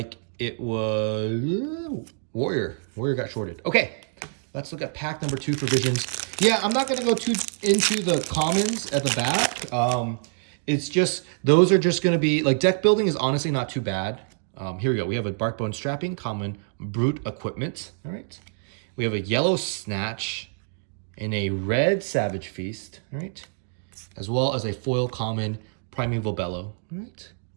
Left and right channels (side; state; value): left; silent; digital silence